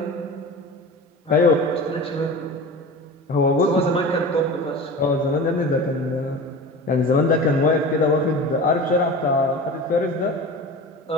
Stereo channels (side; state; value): both; normal; correlation 0.34